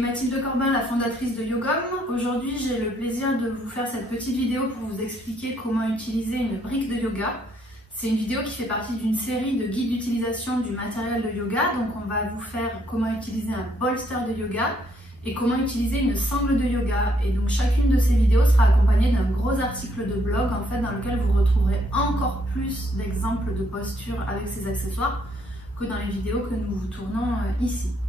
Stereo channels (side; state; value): both; normal; correlation 0.70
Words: Corbin, la fondatrice de Yogom. Aujourd'hui, j'ai le plaisir de vous faire cette petite vidéo pour vous expliquer comment utiliser une brique de yoga. C'est une vidéo qui fait partie d'une série de guides d'utilisation du matériel de yoga. Donc on va vous faire comment utiliser un bolster de yoga et comment utiliser une sangle de yoga. Et donc chacune de ces vidéos sera accompagnée d'un gros article de blog en fait, dans lequel vous retrouverez encore plus d'exemples de postures avec ces accessoires que dans les vidéos que nous vous tournons ici.